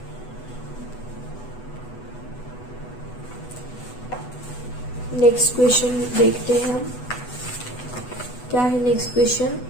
नेक्स्ट क्वेश्चन देखते हैं हम, क्या है next question.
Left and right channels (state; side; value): late; right; 8.1 ms